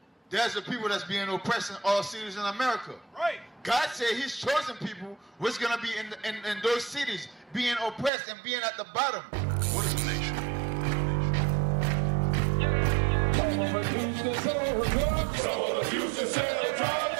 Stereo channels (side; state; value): left; drops out; at 8.1 s